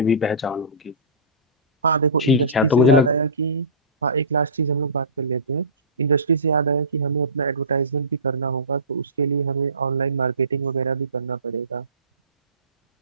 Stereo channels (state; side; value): inverted; both; correlation -0.31